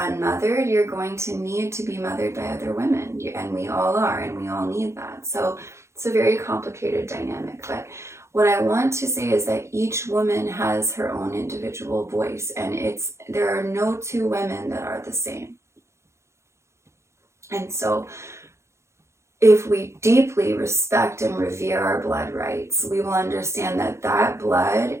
unmothered, you're going to need to be mothered by other women, and we all are, and we all need that. So it's a very complicated dynamic. But what I want to say is that each woman has her own individual voice, and there are no two women that are the same. And so if we deeply respect and revere our blood rights, we will understand that that blood,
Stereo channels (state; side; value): late; left; 0.13 ms